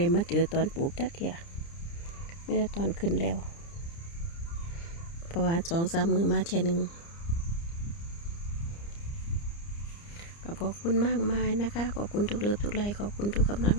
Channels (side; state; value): right; late; 30 ms